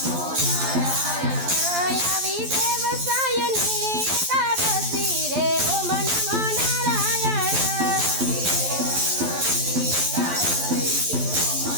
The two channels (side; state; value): left; late; 12 ms